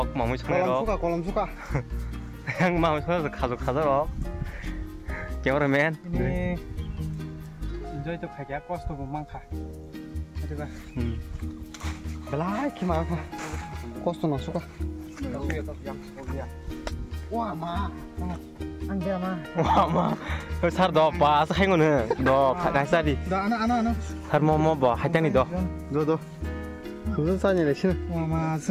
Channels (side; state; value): both; identical; correlation 1.00